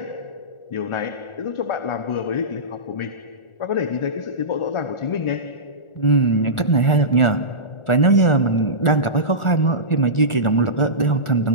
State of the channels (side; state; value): right; late; 1.4 ms